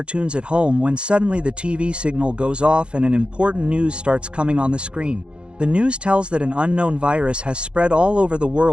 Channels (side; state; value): left; late; 0.055 ms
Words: at home when suddenly the TV signal goes off and an important news starts coming on the screen. The news tells that an unknown virus has spread all over the